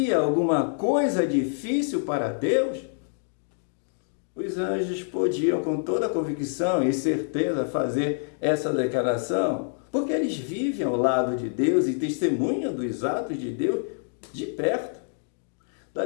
alguma coisa difícil para Deus? Os anjos podiam, com toda convicção e certeza, fazer essa declaração, porque eles vivem ao lado de Deus e testemunham dos atos de Deus de perto. Da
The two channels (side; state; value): right; silent; digital silence